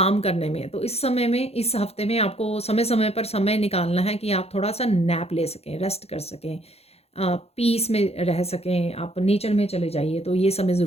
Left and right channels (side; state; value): right; late; 0.30 ms